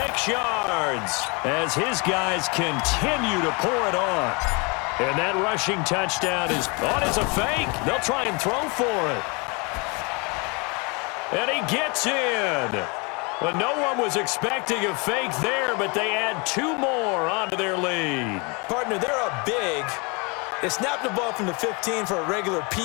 yards, as his guys continue to pour it on. And that rushing touchdown is on as a fake. They'll try and throw for it. And he gets in. But no one was expecting a fake there, but they add 2 more onto their lead. Partner, they're up big. They snapped the ball from the 15 for a regular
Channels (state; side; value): quieter; right; 30.4 dB